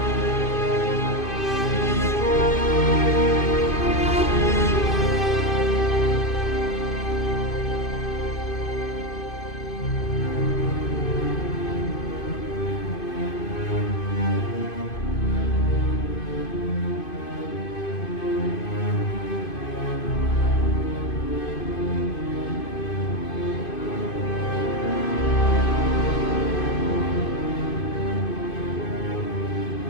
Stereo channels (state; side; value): late; right; 2.5 ms